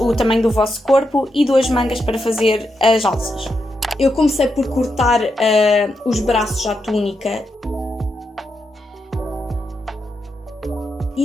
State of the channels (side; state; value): both; normal; correlation 0.84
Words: tamanho do vosso corpo e 2 mangas para fazer as alças. Eu comecei por cortar os braços à túnica